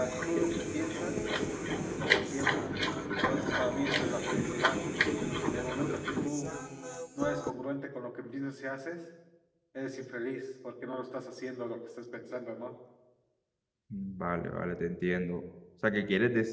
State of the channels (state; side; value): identical; both; correlation 1.00